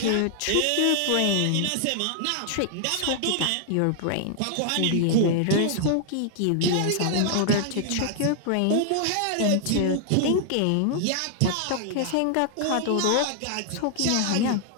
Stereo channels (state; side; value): different; both; correlation 0.00